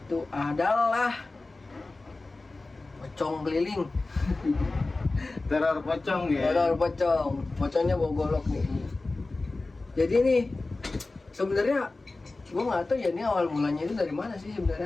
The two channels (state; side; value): quieter; right; 3.3 dB